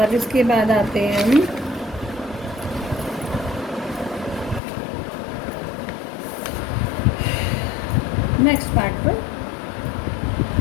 इसके बाद आते हैं हम नेक्स्ट पार्ट पर।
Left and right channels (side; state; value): right; drops out; at 4.6 s